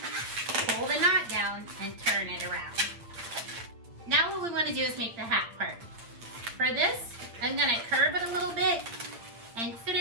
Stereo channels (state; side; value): late; left; 8.7 ms